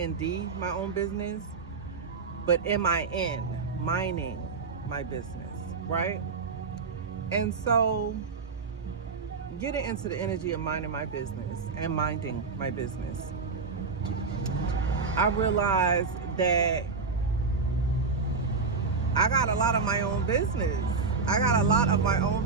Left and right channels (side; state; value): left; quieter; 4.7 dB